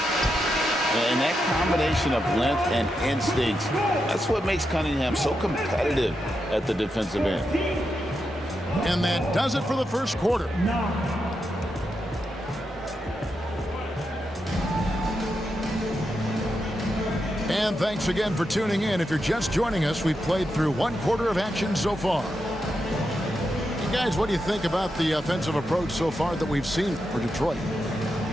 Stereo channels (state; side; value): normal; both; correlation 0.86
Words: that combination of length and instincts, that's what makes Cunningham so competitive at the defensive end. And that does it for the first quarter. And thanks again for tuning in. If you're just joining us, we've played through 1 quarter of action so far. You guys, what do you think about the offensive approach so far that we've seen for Detroit?